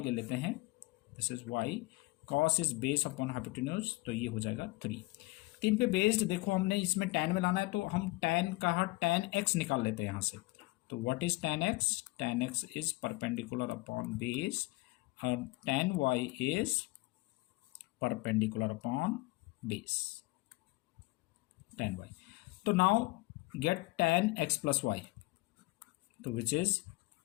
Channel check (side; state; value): right; quieter; 22.7 dB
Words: ले लेते हैं, this is y, cos is base upon hypotenuse, तो ये हो जाएगा 3। 3 पे बेस्ड देखो हमने इसमें tan में लाना है, तो हम tan का tan x निकाल लेते हैं यहाँ से। तो what is tan x? tan x is perpendicular upon base और tan y is perpendicular upon base, tan y. So now get tan x plus y, so which is